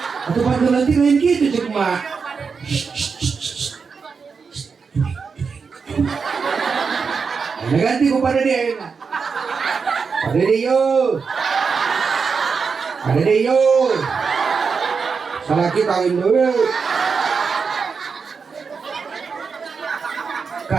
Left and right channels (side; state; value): left; quieter; 5.4 dB